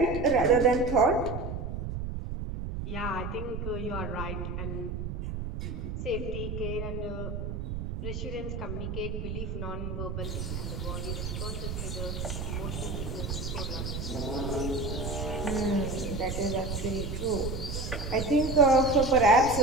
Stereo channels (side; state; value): right; noise; rumble, 4 dB below the sound